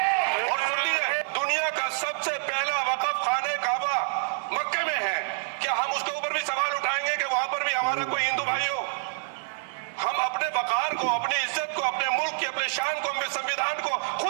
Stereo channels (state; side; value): silent; left; digital silence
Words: और सुन लीजिए, दुनिया का सबसे पहला वक़फ़ खाने काबा मक्के में है। क्या हम उसके ऊपर भी सवाल उठाएंगे कि वहां पर भी हमारा कोई हिंदू भाई हो? हम अपने वकार को, अपनी इज्जत को, अपने मुल्क की, अपने शान को, अपने संविधान को